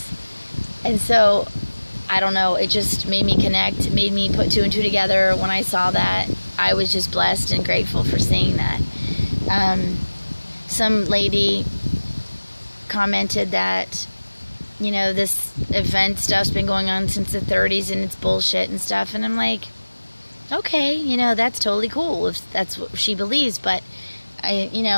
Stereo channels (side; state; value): both; inverted; correlation -1.00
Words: And so, I don't know, it just made me connect, made me put 2 and 2 together. When I saw that, I was just blessed and grateful for seeing that. Some lady commented that, you know, this event stuff's been going on since the 30s and it's bullshit and stuff. And I'm like, okay, you know, that's totally cool if that's what she believes. But,